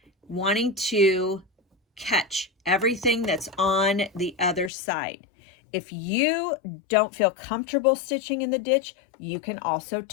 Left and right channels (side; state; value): right; drops out; at 4.7 s